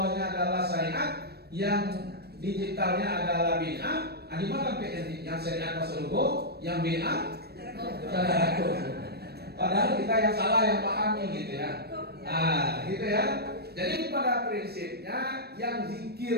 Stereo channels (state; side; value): late; left; 0.47 ms